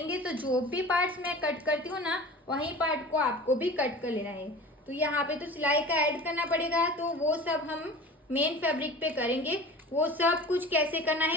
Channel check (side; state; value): both; normal; correlation 0.38